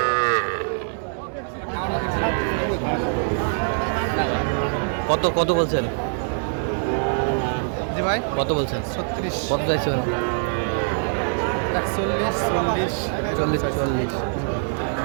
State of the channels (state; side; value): silent; left; digital silence